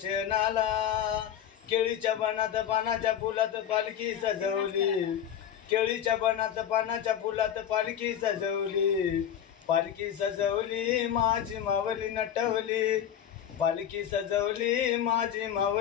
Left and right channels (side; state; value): right; quieter; 9.7 dB